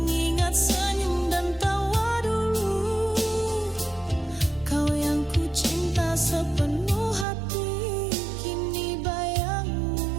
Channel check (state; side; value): drops out; left; at 7.2 s